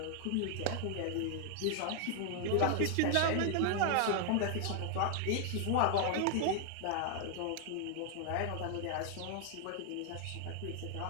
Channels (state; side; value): different; both; correlation 0.00